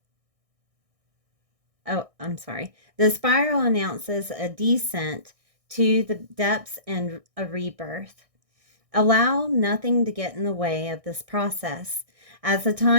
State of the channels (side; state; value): left; late; 1.6 ms